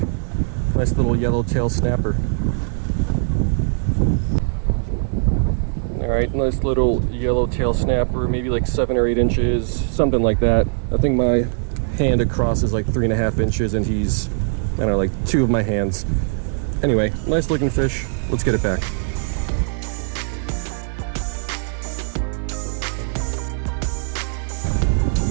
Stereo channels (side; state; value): left; silent; digital silence